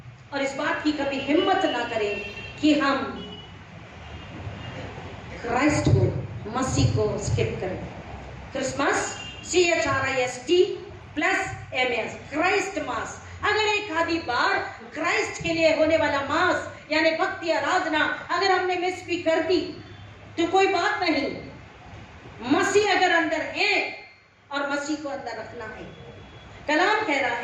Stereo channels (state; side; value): identical; both; correlation 1.00